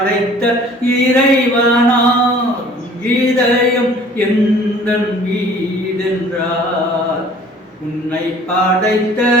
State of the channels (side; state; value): both; normal; correlation 0.51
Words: இறைவனார். இதயம் எந்தன் வீடென்றார், உன்னை படைத்த